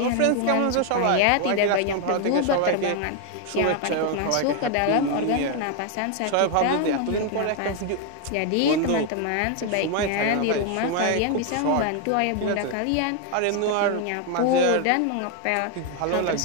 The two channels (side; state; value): both; different; correlation 0.01